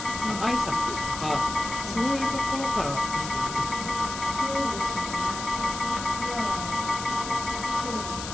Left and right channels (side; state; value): left; noise; hiss, 8 dB below the sound